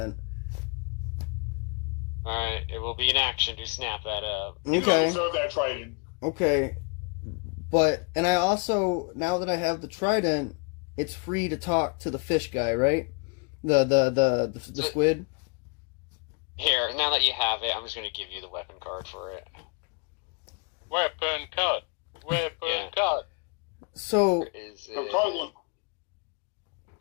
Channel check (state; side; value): quieter; right; 35.7 dB